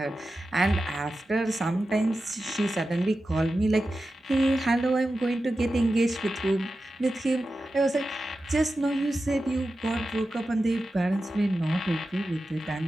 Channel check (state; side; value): normal; both; correlation 0.92